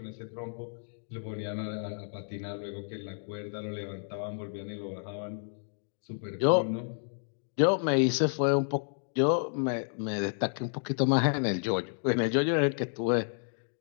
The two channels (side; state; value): right; silent; digital silence